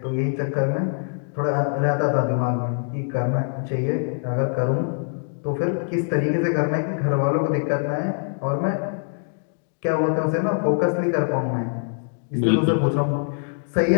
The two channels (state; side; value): silent; right; 63 dB below the other